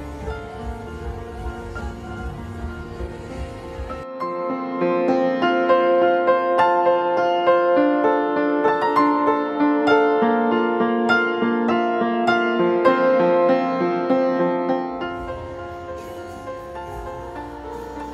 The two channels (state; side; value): identical; both; correlation 1.00